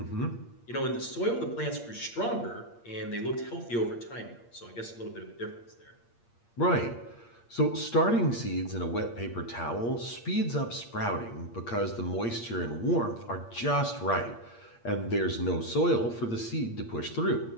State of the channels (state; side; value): late; right; 8.6 ms